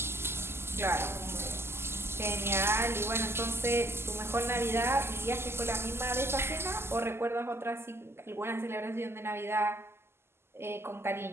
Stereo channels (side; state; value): left; late; 0.12 ms